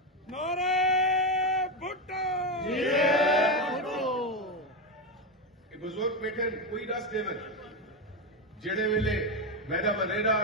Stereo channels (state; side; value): normal; both; correlation 0.11